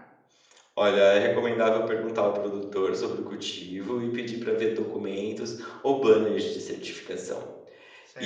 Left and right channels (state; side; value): identical; both; correlation 1.00